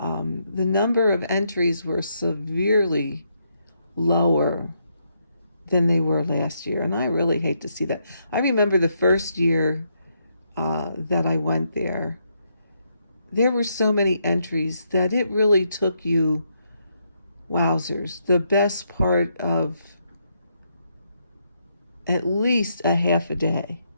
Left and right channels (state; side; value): inverted; both; correlation -0.77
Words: number of entries were severely lower than they were last year, and I really hate to see that. I remember the first year that I went there were so many entries that it really took you, wowzers, the best part of at least a half a day